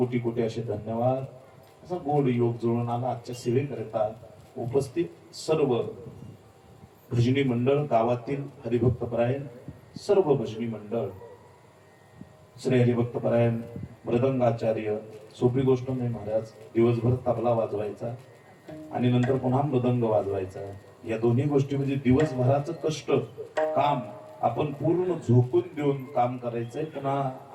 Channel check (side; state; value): both; identical; correlation 1.00